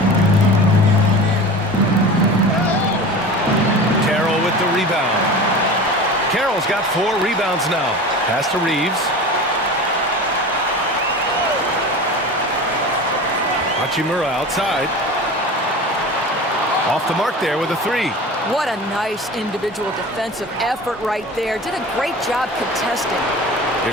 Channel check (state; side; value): normal; both; correlation 0.34